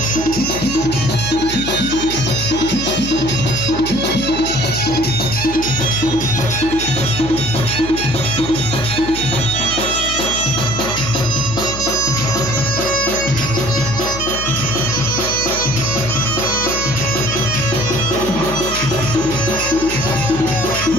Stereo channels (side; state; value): left; noise; hum, 9 dB below the sound